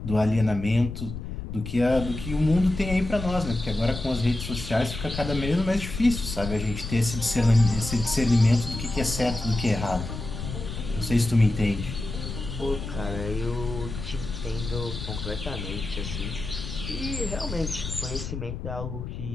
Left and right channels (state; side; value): noise; left; rumble, 7 dB below the sound